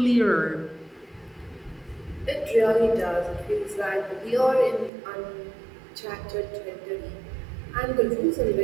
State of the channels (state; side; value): drops out; left; at 4.9 s